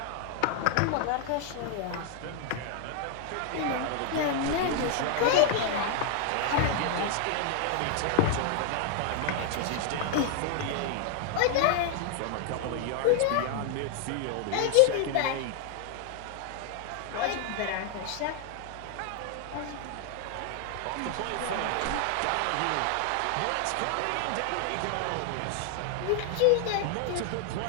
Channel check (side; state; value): both; different; correlation 0.00